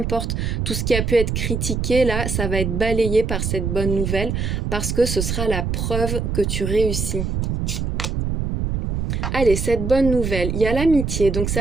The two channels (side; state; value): right; noise; rumble, 1 dB below the sound